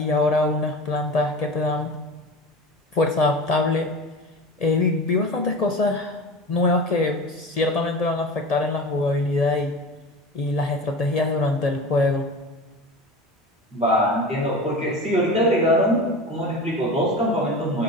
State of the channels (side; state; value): both; normal; correlation 0.32